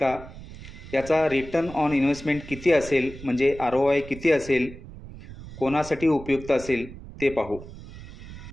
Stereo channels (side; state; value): right; noise; rumble, 15 dB below the sound